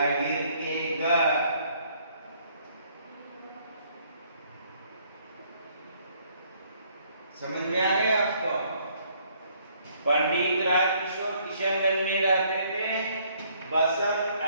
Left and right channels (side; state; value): both; inverted; correlation -0.65